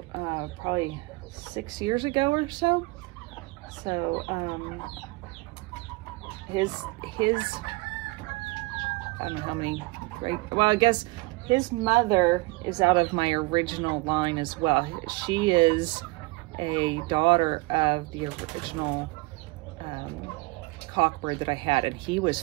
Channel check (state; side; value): quieter; left; 23.9 dB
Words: probably 6 years ago or so. So his I don't know how many, well, I guess his mother is out of my original line as well. She is a daughter of the original cockbird that I had, and he was